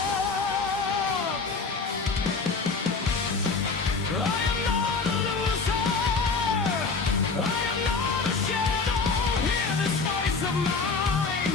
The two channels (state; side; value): quieter; right; 4.5 dB